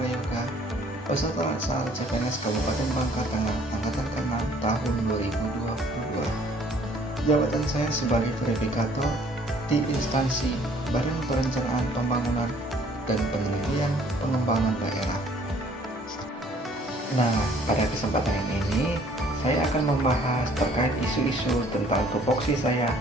peserta laksana CPNS Kabupaten Bangka Tengah Angkatan ke-6 tahun 2022. Jabatan saya sebagai verifikator di instansi Badan Perencanaan Pembangunan dan Penelitian Pengembangan Daerah. Nah, pada kesempatan ini saya akan membahas terkait isu-isu tentang tupoksi saya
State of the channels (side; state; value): both; normal; correlation 0.58